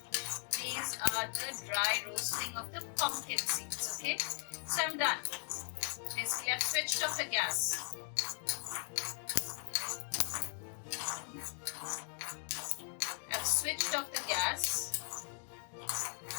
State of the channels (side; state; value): right; quieter; 38.8 dB